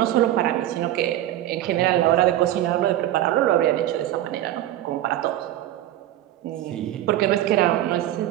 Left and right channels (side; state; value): left; quieter; 13.4 dB